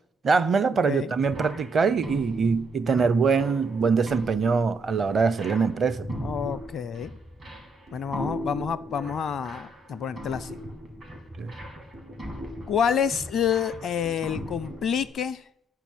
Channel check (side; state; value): both; normal; correlation 0.71